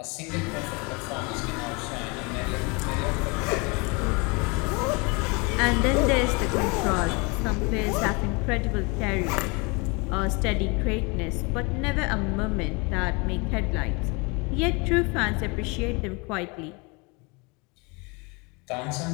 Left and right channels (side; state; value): right; quieter; 29.2 dB